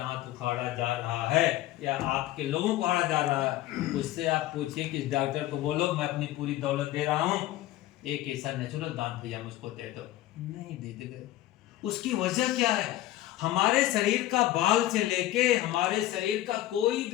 उखाड़ा जा रहा है या आपके लोगों को उखाड़ा जा रहा है, उससे आप पूछिए कि डॉक्टर को बोलो मैं अपनी पूरी दौलत दे रहा हूँ, एक ऐसा नेचुरल दांत भैया मुझको दे दो, नहीं देते गए। उसकी वजह क्या है, हमारे शरीर का बाल से लेके हमारे शरीर का कोई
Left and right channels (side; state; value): right; quieter; 15.1 dB